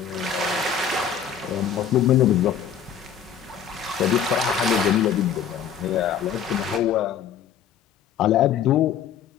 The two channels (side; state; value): right; quieter; 8.1 dB